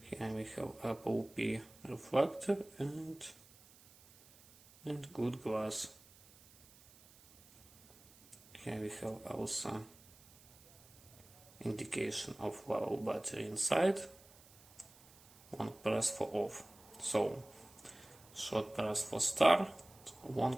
Here we have Apple P reflector and good glass. Here we have also indication of level battery inside. One press for off. So short press for start,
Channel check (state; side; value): noise; right; hiss, 24 dB below the sound